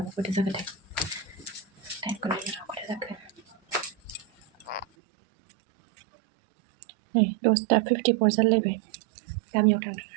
खयथा जाखोथाय टाइमखौ नायनो खयथा जाखो नै 10:54 जालायबाय गामियाव थांदों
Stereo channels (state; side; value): drops out; left; at 4.9 s